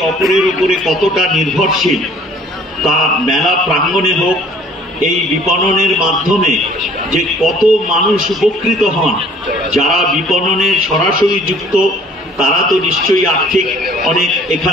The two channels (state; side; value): normal; both; correlation 0.55